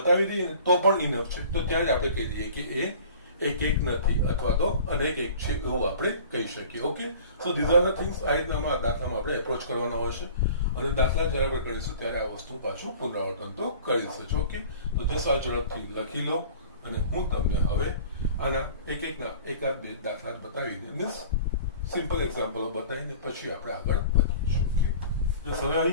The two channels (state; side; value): inverted; both; correlation -0.44